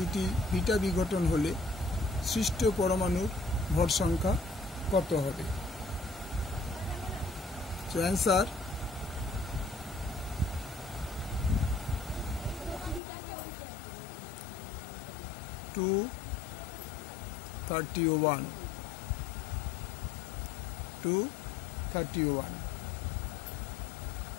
বিটা বিঘটন হলে সৃষ্ট পরমাণুর ভর সংখ্যা কত হবে? So answer two 31।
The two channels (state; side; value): drops out; right; at 13.0 s